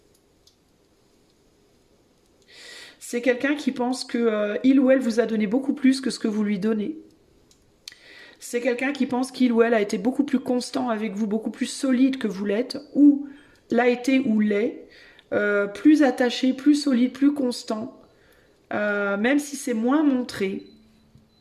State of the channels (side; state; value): both; identical; correlation 1.00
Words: C'est quelqu'un qui pense que il ou elle vous a donné beaucoup plus que ce que vous lui donnez. C'est quelqu'un qui pense qu'il ou elle a été beaucoup plus constant avec vous, beaucoup plus solide que vous l'êtes, ou l'a été ou l'est, plus attaché, plus solide, plus constant, même si c'est moins montré.